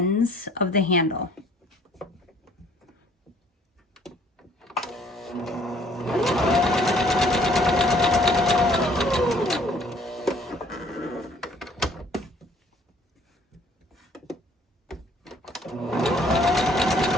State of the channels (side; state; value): both; normal; correlation 0.58